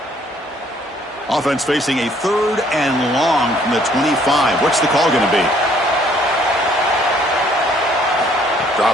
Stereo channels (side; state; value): both; normal; correlation 0.62